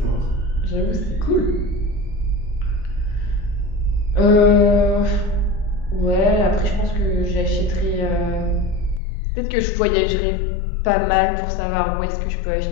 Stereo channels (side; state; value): right; drops out; at 9.0 s